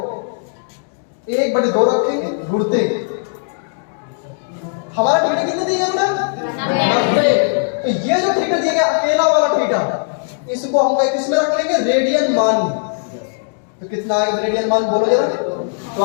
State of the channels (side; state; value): right; silent; digital silence